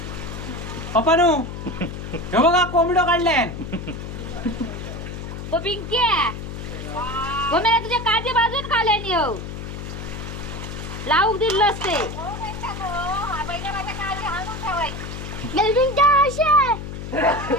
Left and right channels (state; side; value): noise; left; hum, 8 dB below the sound